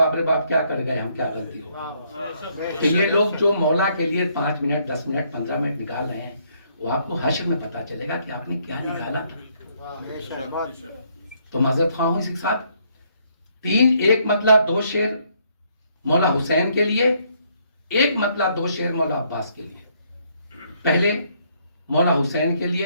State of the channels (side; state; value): both; inverted; correlation -0.70